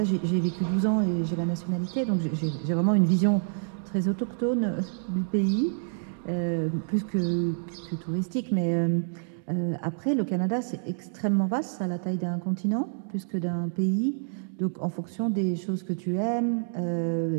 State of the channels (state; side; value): silent; left; digital silence